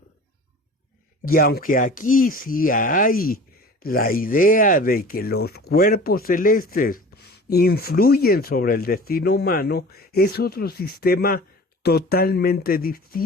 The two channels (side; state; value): both; normal; correlation 0.41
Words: Y aunque aquí sí hay la idea de que los cuerpos celestes influyen sobre el destino humano, es otro sistema totalmente